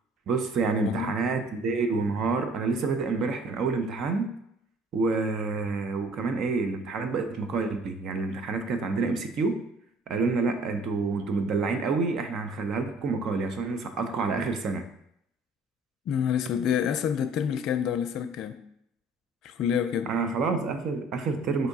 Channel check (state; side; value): normal; both; correlation 0.53